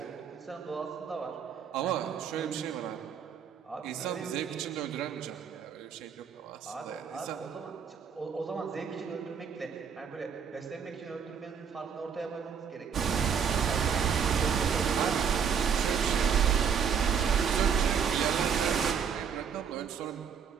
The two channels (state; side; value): quieter; left; 7.0 dB